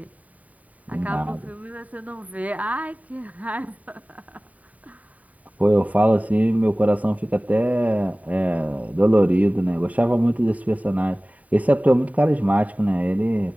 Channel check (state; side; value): late; left; 0.071 ms